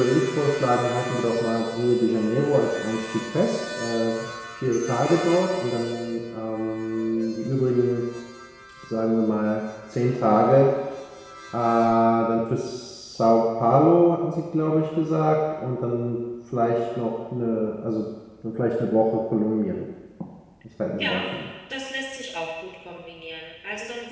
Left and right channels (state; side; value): identical; both; correlation 1.00